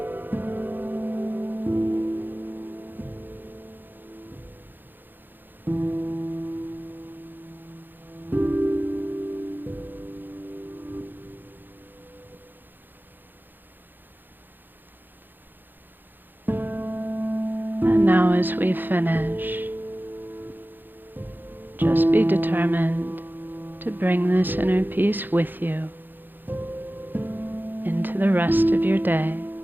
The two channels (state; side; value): late; left; 0.092 ms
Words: now, as we finish, just be determined to bring this inner peace with you into the rest of your day